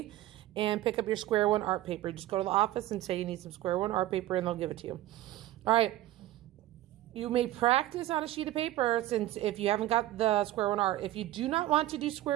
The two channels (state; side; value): quieter; left; 14.8 dB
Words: and pick up your Square One art paper. Just go to the office and say you need some Square One art paper and they'll give it to you. All right. You may practice on a sheet of paper since if you haven't got the Square One art. If you do not want to do